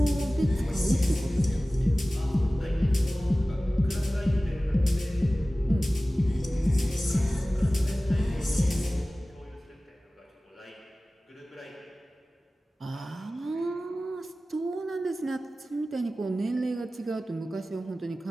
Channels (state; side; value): normal; both; correlation 0.97